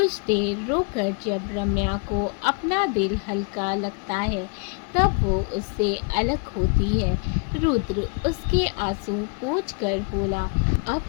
देर रोकर जब रम्या को अपना दिल हल्का लगता है तब वो उससे अलग होती है। रुद्र उसके आंसू पोंछ कर बोला, अब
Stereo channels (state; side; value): quieter; right; 36.8 dB